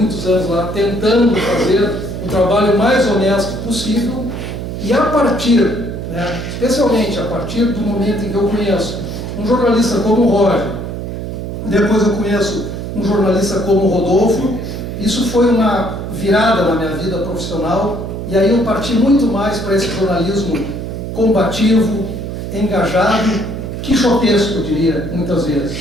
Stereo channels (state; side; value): noise; right; hum, 6 dB below the sound